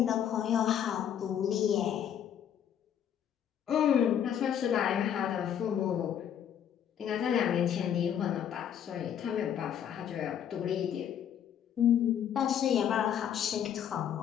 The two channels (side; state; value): right; quieter; 9.3 dB